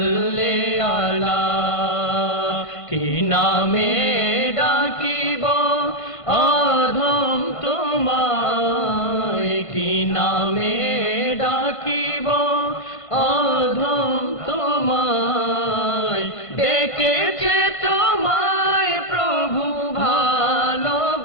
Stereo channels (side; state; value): right; late; 1.5 ms